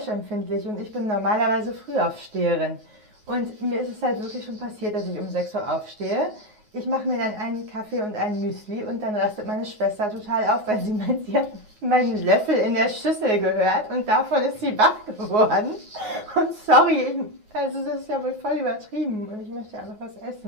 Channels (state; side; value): late; left; 9.5 ms